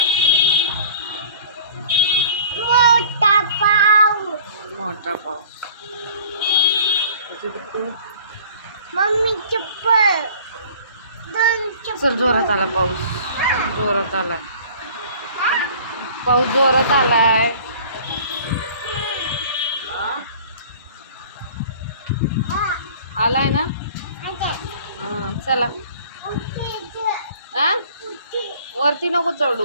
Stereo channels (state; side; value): inverted; both; correlation -0.47